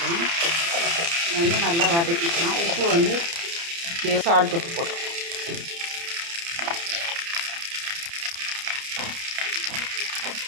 வந்து நல்லா வதக்கிக்கலாம். உப்பு வந்து சால்ட் உப்பு போட்டுக்கலாம்.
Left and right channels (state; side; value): late; left; 29 ms